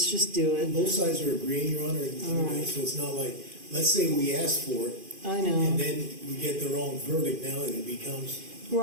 just do it. Both sides are agreeing, Your Honor, All right. so it's not like, let's say we ask for it, I and know, then we get the wrong verdict, now it becomes,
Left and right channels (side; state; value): left; late; 2.5 ms